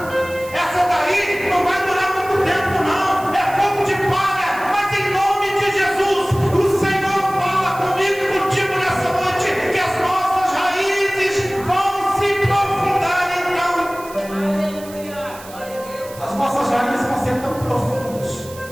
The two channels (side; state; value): right; noise; hiss, 18 dB below the sound